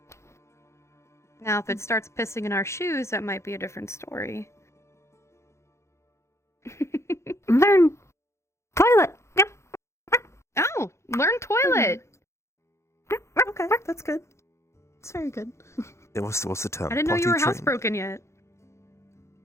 Now, if it starts pissing in our shoes, that might be a different story. Learn toilet. Yep. Oh, learn toilet. Okay, that's good. It's very good. Yeah, what's the term? I didn't know you were Potty housebroken yet.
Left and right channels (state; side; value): late; right; 0.13 ms